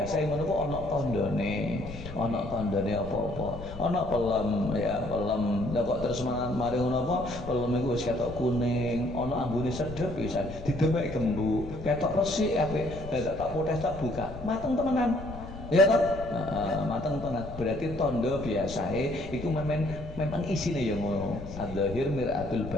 ngono ku ana tandane. Ana tandane apa-apa. Ana pelem ya, pelem. Lah kok terus mari ngono apa? Pelem iku wis ketok kuning, ana ambune sedhep pisan. Didemek gembuk, ketok resik apik. Lah tak potes tak buka. Mateng temenan. Ya tak? Mateng tenan. Berarti tanda biasae iku memang isine ya ngono. Adzahir miratul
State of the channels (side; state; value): left; noise; rumble, 13 dB below the sound